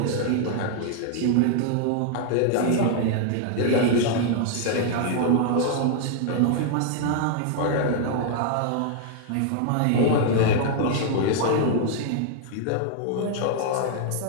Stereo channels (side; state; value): both; different; correlation 0.00